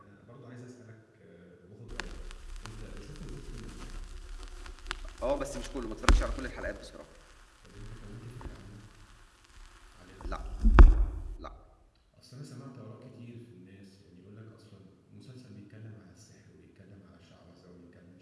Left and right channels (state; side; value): identical; both; correlation 1.00